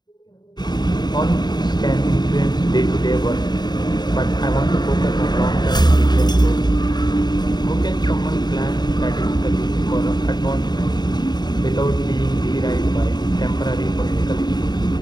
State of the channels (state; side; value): late; right; 0.20 ms